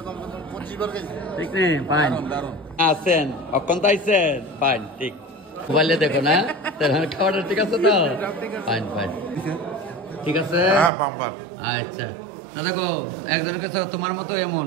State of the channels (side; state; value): left; drops out; at 10.9 s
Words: ঠিক নেই ফাইন আছেন, অক্ষণ আইছেন ফাইন, ঠিক মোবাইলে দেখো না খাওয়াটা ঠিক আছে তো? ফাইন ফাইন ঠিক আছে। আচ্ছা তো দেখো একজনের কাছে তোমার মতো এমন,